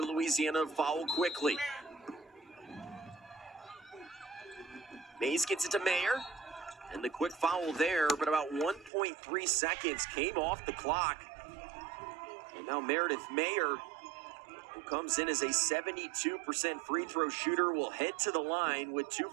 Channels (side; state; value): left; drops out; at 8.9 s